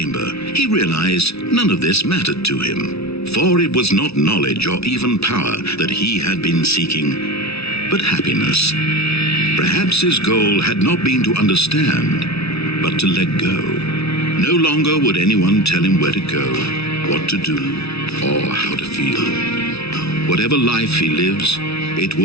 he realized none of this mattered to him, for it was not knowledge or even power that he had been seeking, but happiness. Perhaps his goal had not been to understand, but to let go. No longer would anyone tell him where to go, what to do, or how to feel. Whatever life he lives, it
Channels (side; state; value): right; late; 0.79 ms